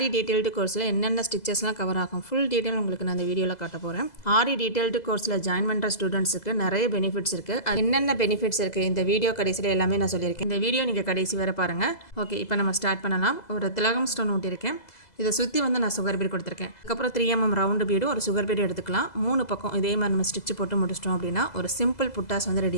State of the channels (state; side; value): late; right; 2.0 ms